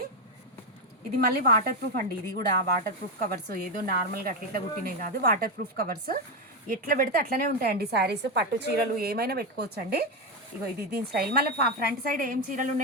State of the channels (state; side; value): normal; both; correlation 0.08